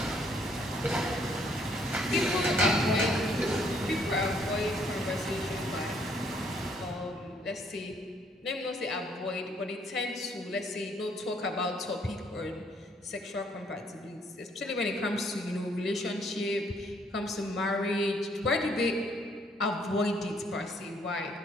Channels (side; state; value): both; normal; correlation 0.66